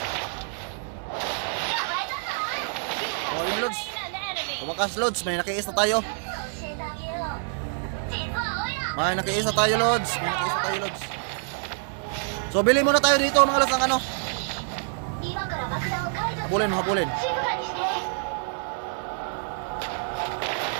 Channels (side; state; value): left; silent; digital silence